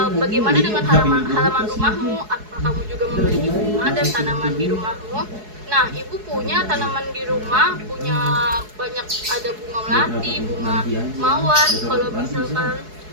bagaimana dengan halaman rumahmu? Apakah kamu juga memiliki bunga dan tanaman di rumahmu? Nah, Ibu punya tanaman di rumah, punya banyak, ada bunga melati, bunga mawar. Kalau misalkan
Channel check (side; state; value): left; late; 4.7 ms